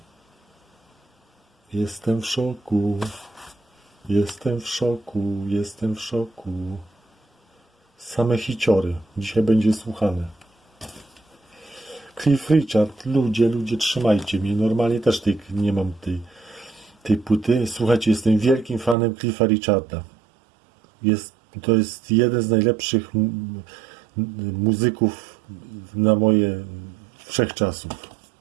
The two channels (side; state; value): left; drops out; at 18.9 s